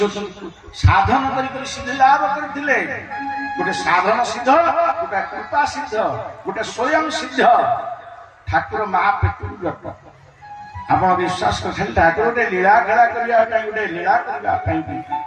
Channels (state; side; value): identical; both; correlation 1.00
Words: ସାଧନ କରି ସିଦ୍ଧି ଲାଭ କରିଥିଲେ ଗୋଟେ ସାଧନ ସିଦ୍ଧ ଗୋଟେ କୃପା ସିଦ୍ଧ ଗୋଟେ ସ୍ୱୟଂ ସିଦ୍ଧ ଠାକୁର ମା ପେଟରୁ ଜଟ ଆପଣ ବିଶ୍ୱାସ କରିଥିଲେ ଠାକୁର ଗୋଟେ ଲୀଳା ଖେଳା କରିବା ପାଇଁ ଗୋଟେ ଲୀଳା କରିବା ପାଇଁ